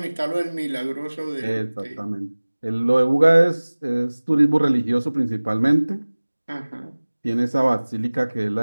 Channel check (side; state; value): both; inverted; correlation -1.00